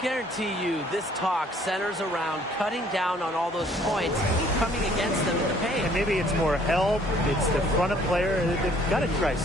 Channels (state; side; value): normal; both; correlation 0.60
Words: you this talk centers around cutting down on all those points coming against them in the paint. And maybe it's more help. It's the front of player. They've got to try